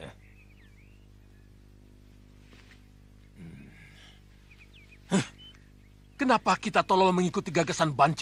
Kenapa kita tolong mengikuti gagasan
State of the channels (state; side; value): identical; both; correlation 1.00